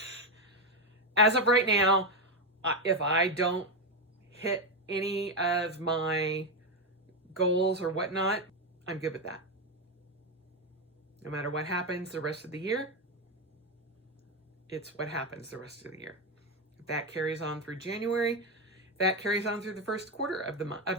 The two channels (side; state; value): both; normal; correlation 0.08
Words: As of right now, if I don't hit any of my goals or whatnot, I'm good with that. No matter what happens the rest of the year, it's what happens the rest of the year. If that carries on through January, if that carries on through the first quarter of